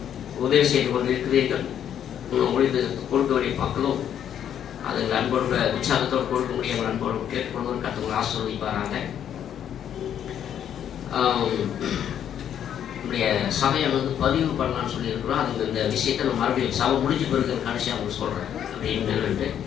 உதவி செய்து கொண்டு இருக்கிறீர்கள். உங்களுக்கு கொடுக்க வேண்டிய மக்களும் அதுக்கு அன்போடு உற்சாகத்தோடு கொடுக்க முடியும். அன்போடு கேட்டுக்கொண்டு கற்றுங்களை ஆசீர்வதிப்பாராங்க. நம்முடைய சபையை பதிவு பண்ணலான்னு சொல்லியிருக்கிறோம். அதுக்கு இந்த விஷயத்தை நம்ம மறுபடியும் சபை முடிஞ்சு பிறகு கடைசியாக அவங்க சொல்கிறேன் அப்படின்னு என்னன்ட்டு.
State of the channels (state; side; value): quieter; right; 9.6 dB